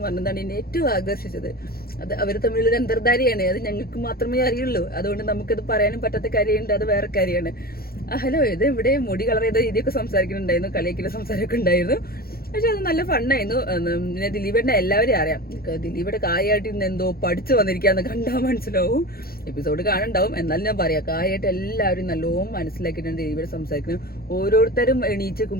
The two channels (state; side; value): late; right; 0.44 ms